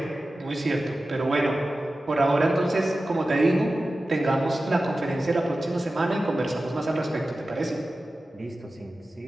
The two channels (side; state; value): both; normal; correlation 0.94